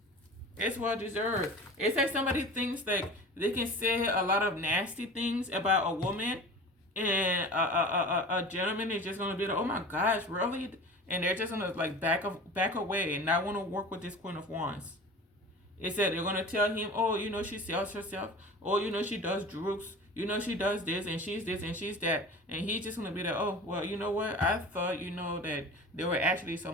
It's well deserved. It's like somebody thinks like they can say a lot of nasty things about a woman, and a gentleman is just gonna be like, oh my gosh, really? And they're just gonna like back away and not want to work with this Queen of Wands. It said they're gonna tell him, oh, you know, she sells herself. Oh, you know, she does drugs. You know, she does this and she's that. And he's just gonna be like, oh, well, you know what? I thought, you know, that they were actually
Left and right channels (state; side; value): normal; both; correlation 0.36